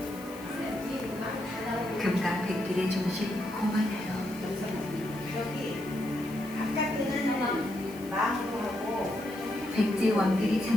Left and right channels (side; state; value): left; noise; hiss, 19 dB below the sound